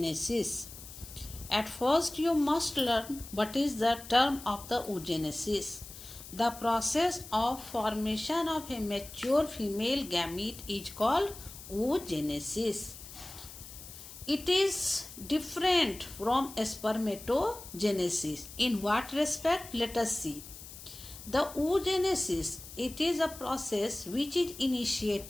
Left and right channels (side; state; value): left; noise; hiss, 15 dB below the sound